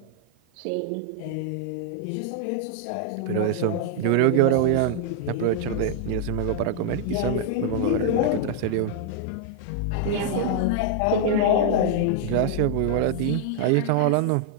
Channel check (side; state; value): both; different; correlation -0.01